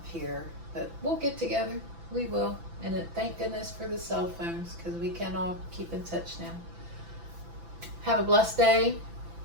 here. But we'll get together. We will. And thank goodness for the cell phones, because we can all keep in touch now. Have a blessed day.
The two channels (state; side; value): late; left; 6.0 ms